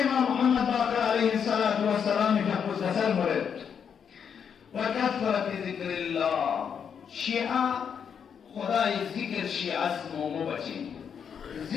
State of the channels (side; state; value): right; quieter; 7.4 dB